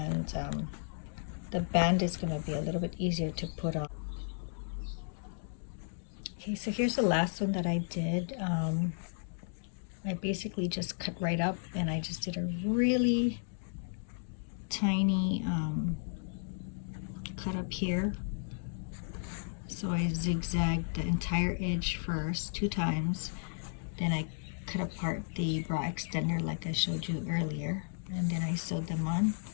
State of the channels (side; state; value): right; silent; digital silence